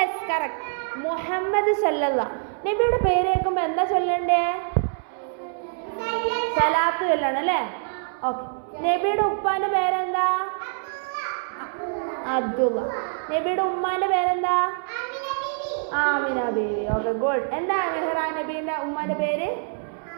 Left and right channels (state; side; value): silent; left; 62 dB below the other